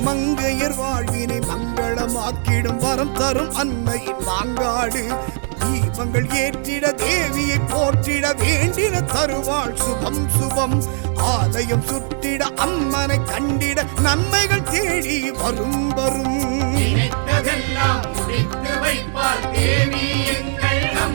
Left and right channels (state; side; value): silent; left; 66 dB below the other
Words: மங்கையர் வாழ்வினை மங்களமாக்கிடும் வரம் தரும் அன்னையின் மாங்காடு. தீபங்கள் ஏற்றிட தேவியை போற்றிட வேண்டின தருவாள் சுபம் சுபம். ஆலயம் சுற்றிட அம்மனை கண்டிட நன்மைகள் தேடி வரும் வரும். நினைத்ததெல்லாம் முடித்து வைப்பார் தேவி எங்கள்